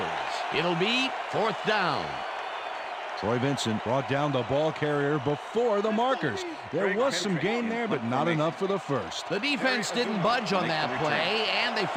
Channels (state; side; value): identical; both; correlation 1.00